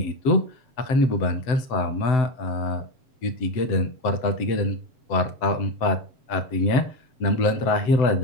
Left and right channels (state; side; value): late; right; 7.8 ms